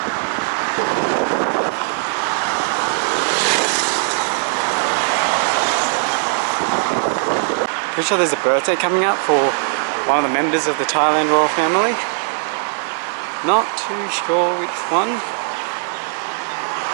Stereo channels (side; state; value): left; silent; digital silence